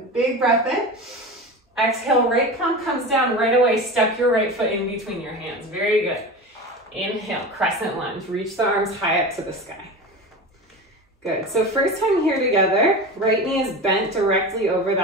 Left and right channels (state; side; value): normal; both; correlation 0.29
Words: Big breath in. Exhale, right palm comes down right away. Step your right foot in between your hands. Very good. Inhale, crescent lunge. Reach the arms high up to the sky. Good. So first time here together, right knee is bent directly over